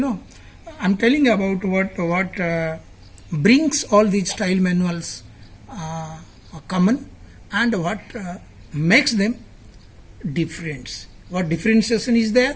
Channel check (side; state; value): both; identical; correlation 1.00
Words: I'm telling about what brings all these style manuals common, and what makes them different. What differentiation is there?